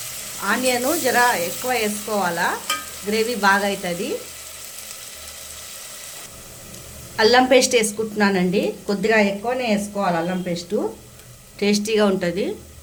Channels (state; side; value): identical; both; correlation 1.00